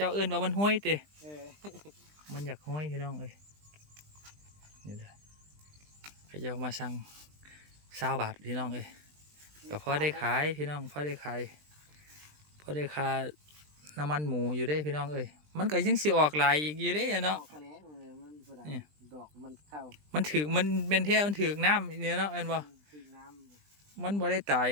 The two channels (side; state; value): left; late; 20 ms